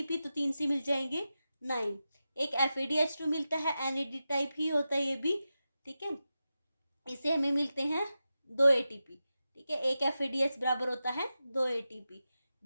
तो 3 से मिल जाएंगे 9। एक FADH2 मिलता है, NAD टाइप ही होता है ये भी। ठीक है, इसे हमें मिलते हैं 2 ATP। ठीक है, एक FADH बराबर होता है 2 ATP।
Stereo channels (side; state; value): both; inverted; correlation -0.92